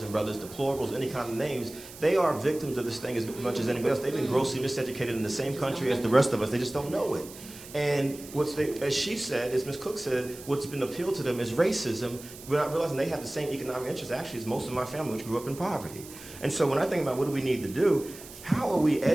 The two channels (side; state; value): right; noise; hiss, 16 dB below the sound